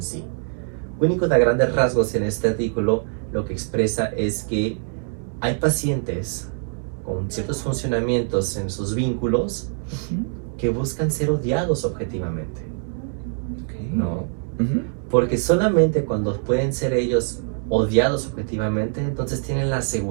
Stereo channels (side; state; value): left; silent; 56 dB below the other